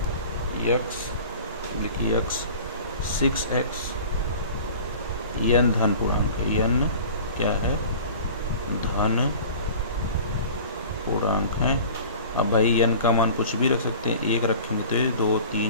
यक्स, लिखिए यक्स 6x, यन धन पूर्णांक है, यन क्या है, धन पूर्णांक है। अब भाई यन का मान कुछ भी रख सकते हैं, एक रखेंगे तो ये 2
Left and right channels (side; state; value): both; inverted; correlation -0.42